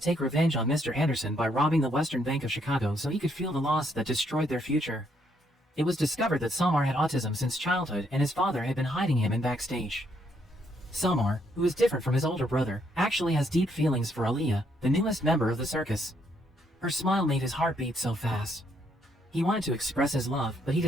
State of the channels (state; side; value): normal; both; correlation 0.72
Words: revenge on Mr. Anderson by robbing the Western Bank of Chicago so he could feel the loss that destroyed their future. It was discovered that Samar had autism since childhood and his father had been hiding him in backstage. Samar, who is different from his older brother, actually has deep feelings for Aliyah, the newest member of the circus. Her smile made his heart beat so fast. He wanted to express his love, but he